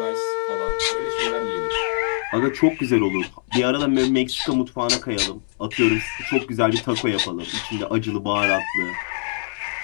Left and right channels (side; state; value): right; silent; digital silence